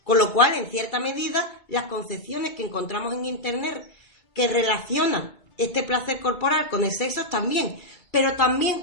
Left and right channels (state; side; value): late; right; 2.2 ms